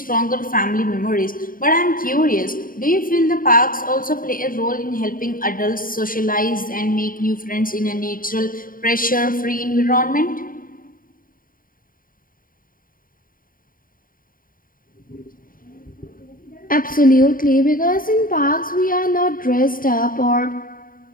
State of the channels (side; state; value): right; late; 0.41 ms